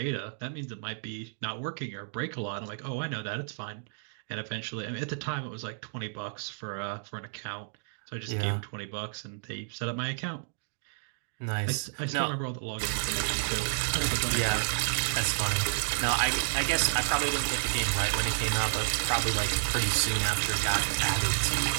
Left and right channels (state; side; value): silent; left; digital silence